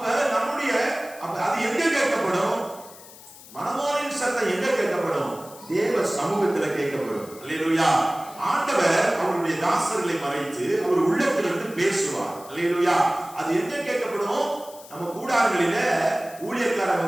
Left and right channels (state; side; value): noise; left; hiss, 19 dB below the sound